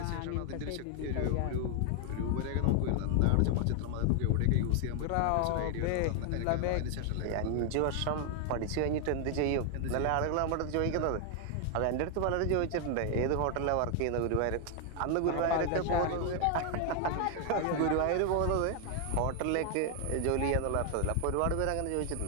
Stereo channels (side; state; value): both; different; correlation 0.00